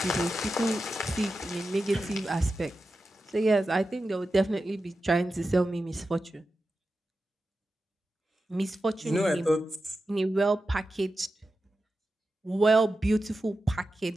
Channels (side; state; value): both; normal; correlation 0.92